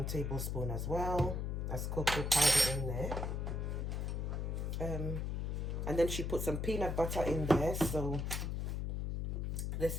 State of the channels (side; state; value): left; noise; hum, 1 dB below the sound